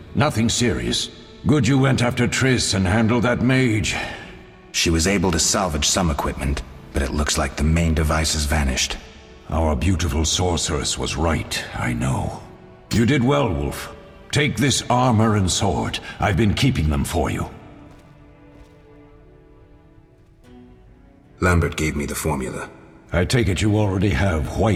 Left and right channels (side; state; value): both; identical; correlation 1.00